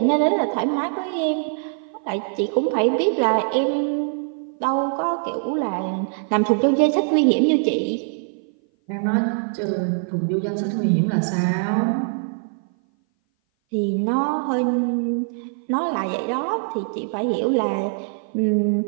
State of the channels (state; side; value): silent; left; 58 dB below the other